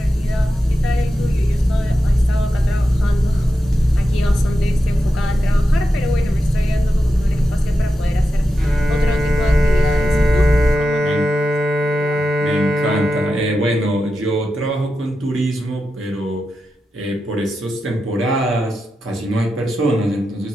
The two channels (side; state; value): both; normal; correlation 0.90